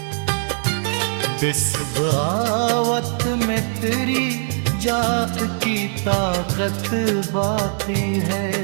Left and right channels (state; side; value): silent; left; digital silence